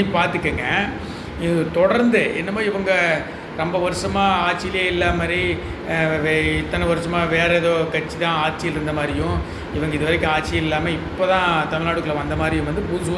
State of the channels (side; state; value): both; identical; correlation 1.00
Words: பார்த்துக்கங்க, இது தொடர்ந்து என்னமோ இவங்க ரொம்ப வருஷமாக ஆட்சியிலே இல்லாத மாதிரி, இத்தனை வருஷமாக வேறு ஏதோ கட்சி தான் ஆட்சியில் இருந்த மாதிரியும், இவங்க இது வரைக்கும் ஆட்சி இல்லாமல் இப்போ தான் தமிழ்நாட்டுக்குள்ளே வந்த மாதிரியும் புதுசு